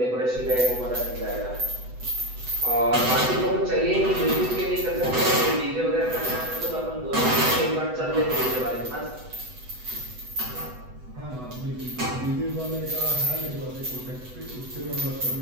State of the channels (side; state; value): left; late; 8.0 ms